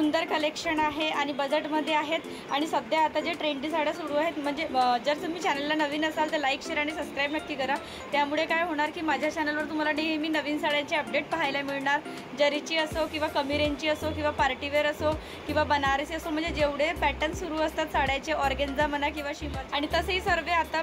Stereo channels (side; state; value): both; identical; correlation 1.00